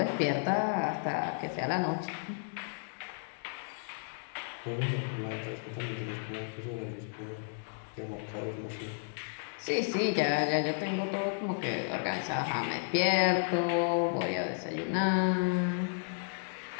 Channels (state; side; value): silent; right; digital silence